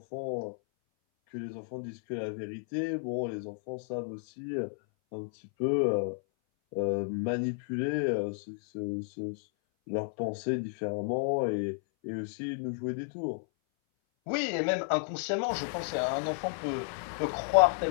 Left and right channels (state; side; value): silent; right; 56 dB below the other